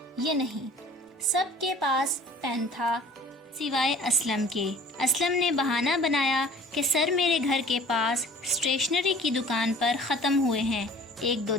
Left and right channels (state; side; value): normal; both; correlation 0.49